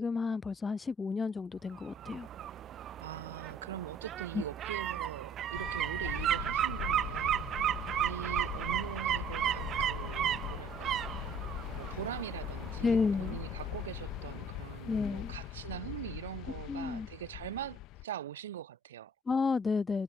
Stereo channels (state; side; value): normal; both; correlation 0.55